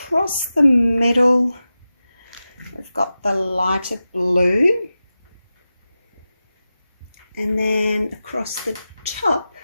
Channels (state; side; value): inverted; both; correlation -0.93